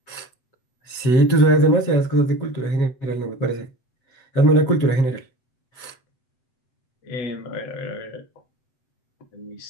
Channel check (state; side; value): late; right; 7.9 ms